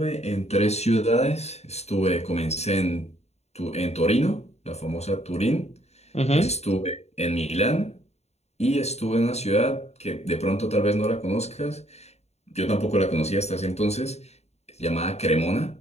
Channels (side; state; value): right; late; 0.31 ms